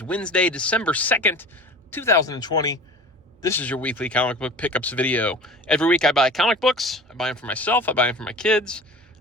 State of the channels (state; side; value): normal; both; correlation 0.39